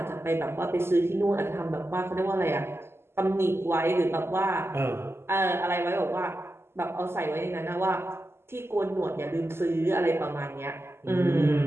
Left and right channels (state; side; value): late; left; 0.12 ms